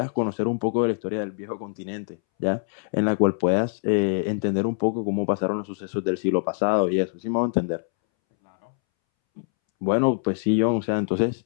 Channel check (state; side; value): silent; right; 62 dB below the other